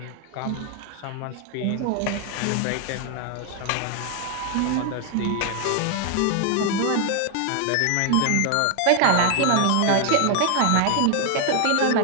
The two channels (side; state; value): both; different; correlation 0.00